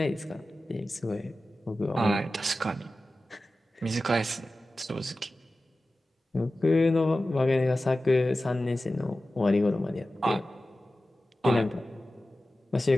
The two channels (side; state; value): both; normal; correlation 0.95